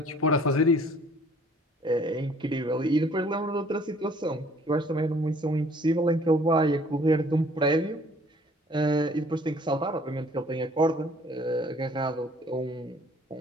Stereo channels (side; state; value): both; normal; correlation 0.56